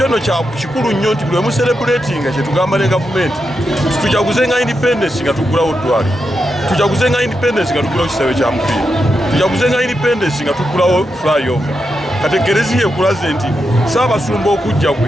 nno kikulu nnyo nti buli emuserebuletinga kyetugamba ne gavumenti tujaguze nga independence nga tugulawo ddwaliro tujaguze nga independence nga tugulawo kisaawe kya mupiira tujaguze nga independence nga tugulawo flyover kati ekereziya ekulaze nti Ssaabasumba okujja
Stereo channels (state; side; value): normal; both; correlation 0.86